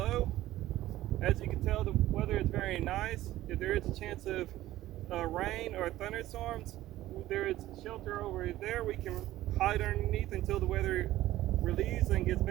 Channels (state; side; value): quieter; left; 15.2 dB